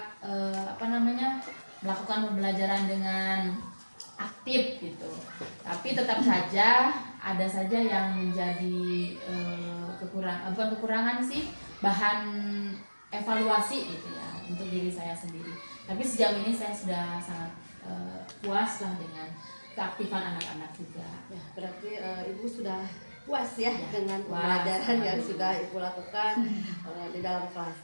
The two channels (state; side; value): inverted; both; correlation -1.00